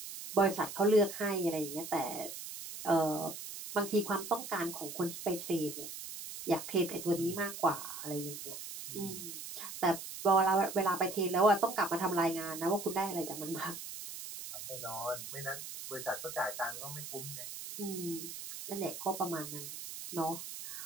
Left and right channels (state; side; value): noise; right; hiss, 9 dB below the sound